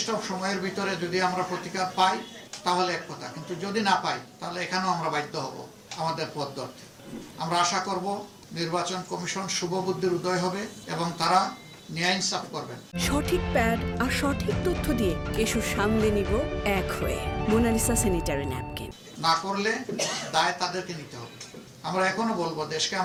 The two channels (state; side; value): identical; both; correlation 1.00